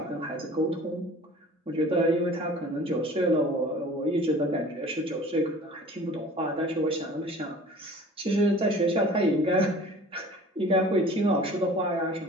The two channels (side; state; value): both; normal; correlation 0.45